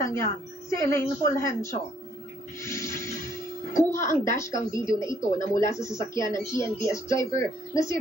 yan, si Elaine Fulgencio. Kuha ang dashcam video na ito na mula sa sasakyan ng TNVS driver na si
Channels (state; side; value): normal; both; correlation 0.67